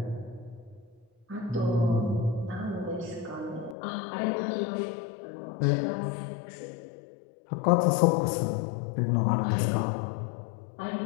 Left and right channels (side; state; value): right; drops out; at 3.8 s